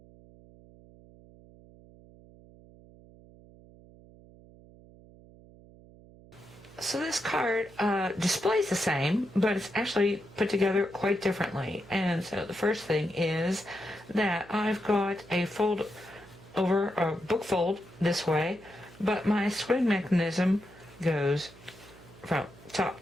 this card displays the same, but it's actually put together quite differently. And so the first thing is that I've got a fold over a book fold this way, but my swing mechanism goes from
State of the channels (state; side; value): noise; right; hum, 22 dB below the sound